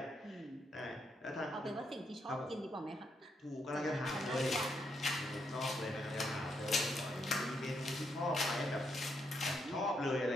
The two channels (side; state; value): both; normal; correlation 0.78